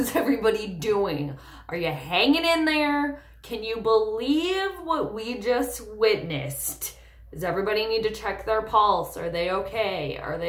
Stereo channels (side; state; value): both; identical; correlation 1.00